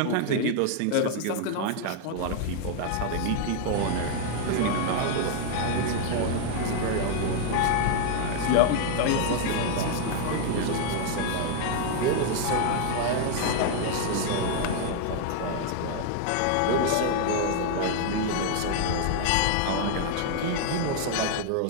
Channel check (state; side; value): different; both; correlation 0.00